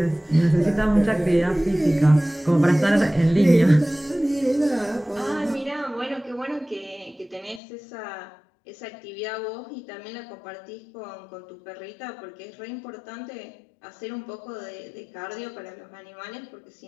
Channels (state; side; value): drops out; right; at 7.6 s